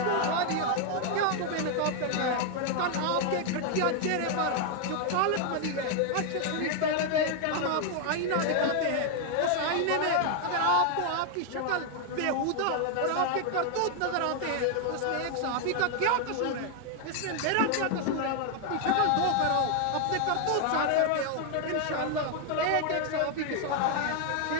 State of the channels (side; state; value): both; different; correlation 0.00